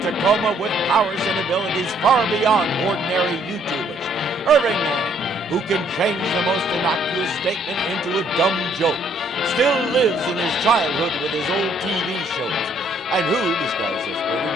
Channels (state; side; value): normal; both; correlation 0.65